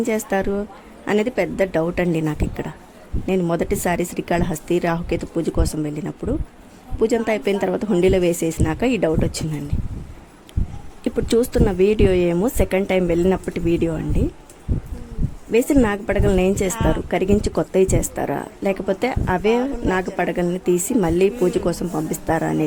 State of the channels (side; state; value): both; identical; correlation 1.00